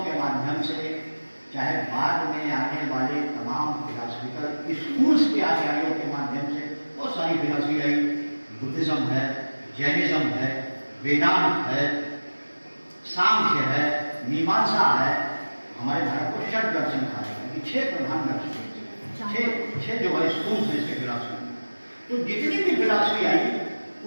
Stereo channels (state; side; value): inverted; both; correlation -1.00